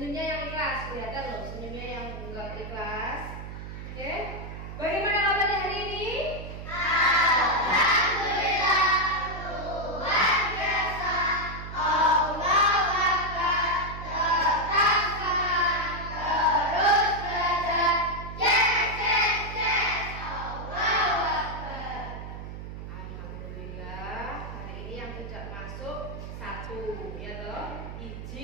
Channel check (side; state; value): right; noise; hum, 9 dB below the sound